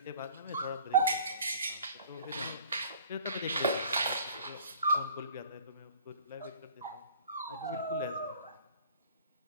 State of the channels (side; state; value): both; inverted; correlation -0.50